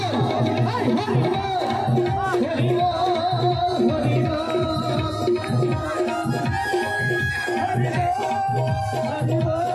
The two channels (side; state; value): both; identical; correlation 1.00